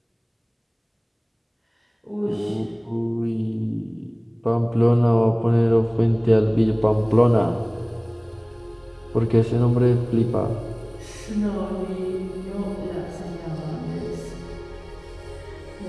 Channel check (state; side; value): identical; both; correlation 1.00